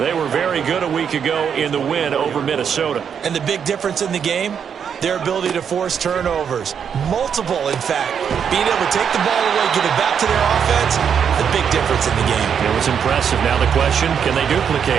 were very good a week ago in the win over Minnesota. And the big difference in the game? Their ability to force turnovers. Multiple, in fact. Being able to take the ball away, give it back to their offense, the big difference in the game. It was impressive. Now the question, can they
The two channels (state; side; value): quieter; left; 7.5 dB